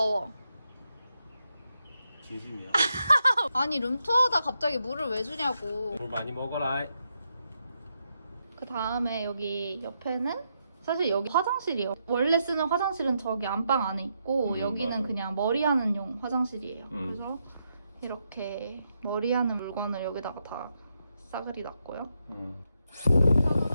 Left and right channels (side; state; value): both; inverted; correlation -0.82